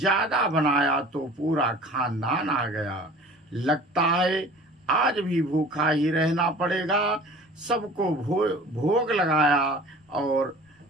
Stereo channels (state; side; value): normal; both; correlation 0.44